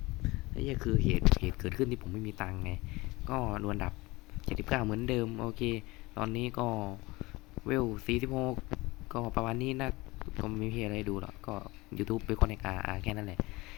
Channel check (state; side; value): quieter; right; 21.9 dB